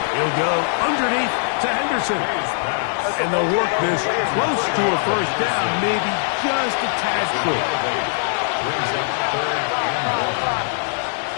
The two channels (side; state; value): right; silent; digital silence